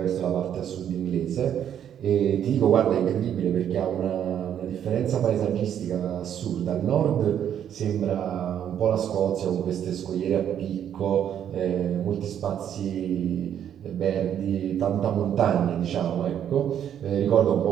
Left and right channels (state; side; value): quieter; left; 9.6 dB